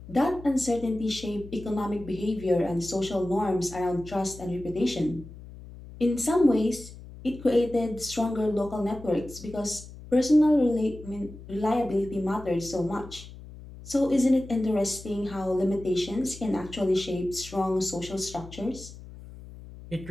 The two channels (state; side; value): noise; left; hum, 16 dB below the sound